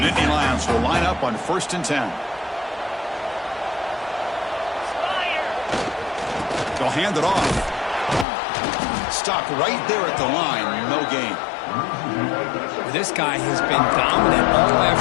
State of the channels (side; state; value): right; drops out; at 8.2 s